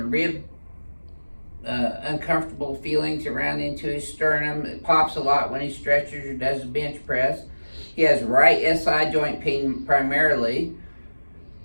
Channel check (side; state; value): both; inverted; correlation -1.00